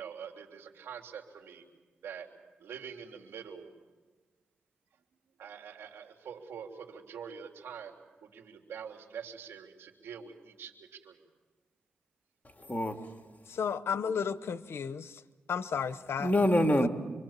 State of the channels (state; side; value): normal; both; correlation 0.80